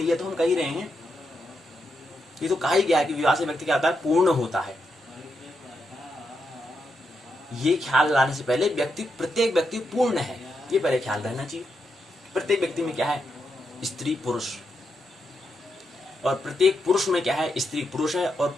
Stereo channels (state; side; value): normal; both; correlation 0.83